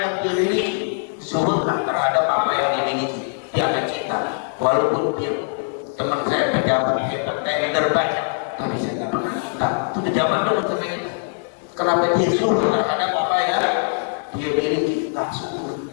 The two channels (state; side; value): silent; right; digital silence